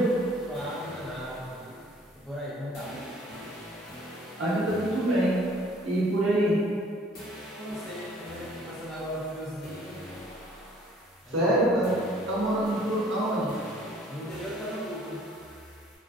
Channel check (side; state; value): both; normal; correlation 0.57